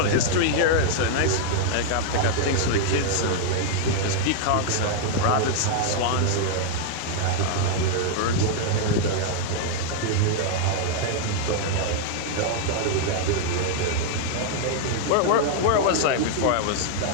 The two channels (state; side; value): different; both; correlation 0.00